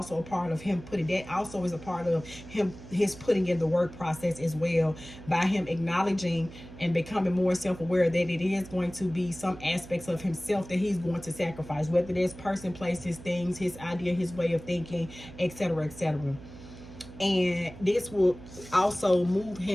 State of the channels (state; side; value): noise; right; hum, 16 dB below the sound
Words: a part of him putting, that also is a part of his putting in the work process as well, by him acknowledging and becoming more self-aware that it is going to be some aspects of himself that he's going to sacrifice, whether there's person, places, things, his idea, his way of thinking, etc., etc. And this will also move